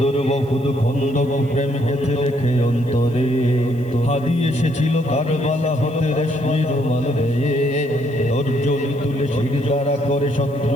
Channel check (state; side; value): noise; right; hiss, 29 dB below the sound